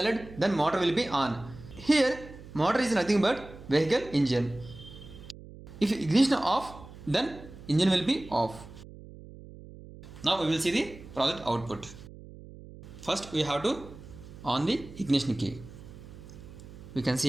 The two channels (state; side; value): noise; right; hum, 17 dB below the sound